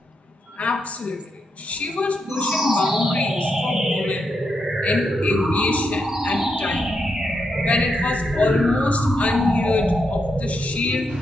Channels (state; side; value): normal; both; correlation 0.82